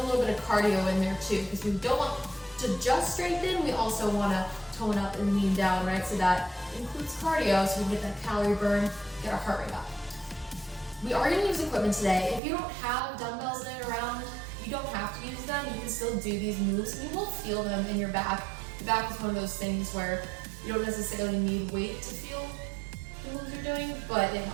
little bit of cardio in there too, because we don't want to just strengthen, we also want to tone up and lean down, right? So that includes cardio, so we get that calorie burn, get our heart rate up. We are going to use equipment today. If you don't have dumbbells laying around, you don't have to use them. You can still do these moves. You will feel them in your back. The back is one of those things where you don't necessarily need weight to feel the moves you're doing, but it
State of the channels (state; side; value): drops out; left; at 12.4 s